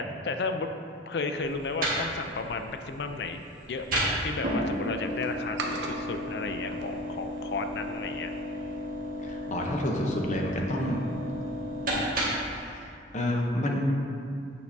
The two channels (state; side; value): normal; both; correlation 0.39